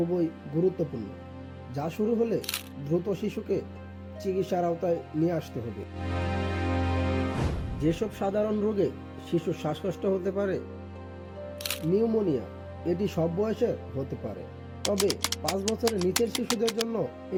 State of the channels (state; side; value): identical; both; correlation 1.00